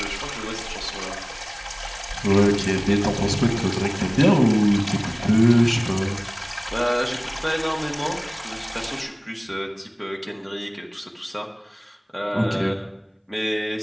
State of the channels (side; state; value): both; identical; correlation 1.00